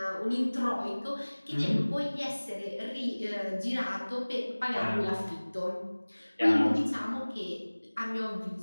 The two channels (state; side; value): inverted; both; correlation -1.00